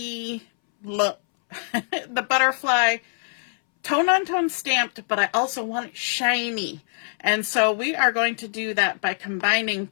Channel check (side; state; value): right; silent; 63 dB below the other